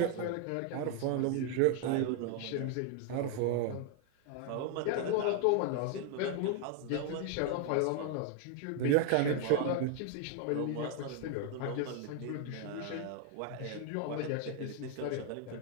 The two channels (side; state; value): both; different; correlation 0.00